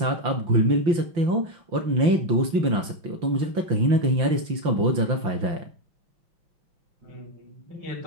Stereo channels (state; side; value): late; left; 5.9 ms